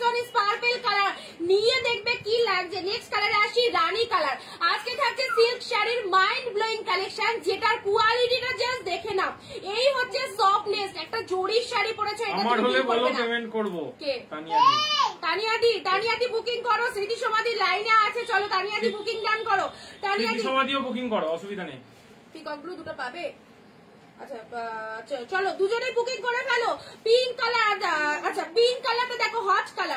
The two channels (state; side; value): identical; both; correlation 1.00